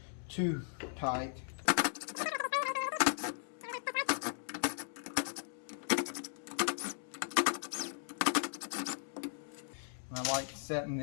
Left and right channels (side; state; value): right; silent; digital silence